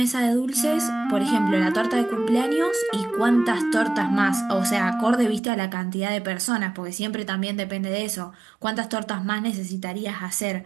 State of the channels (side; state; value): left; drops out; at 5.4 s